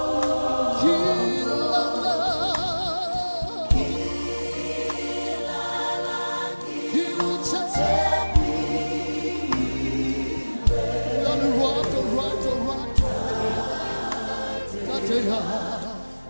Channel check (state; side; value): inverted; both; correlation -1.00